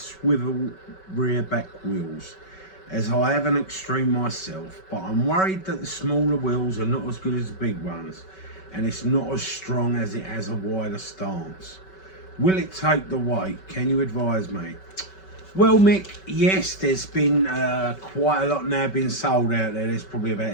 rear back wheels, as I have an extreme myself, but I'm worried that the smaller wheels are not as good as the big ones, and it's not as strong as it has a wider stance. Will it take the weight? Can you advise me? Well, Mick, yes, there's been quite a lot now being sold out there. There's probably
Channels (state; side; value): late; right; 5.3 ms